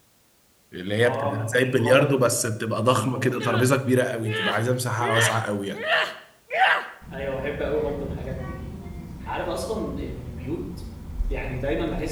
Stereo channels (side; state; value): both; identical; correlation 1.00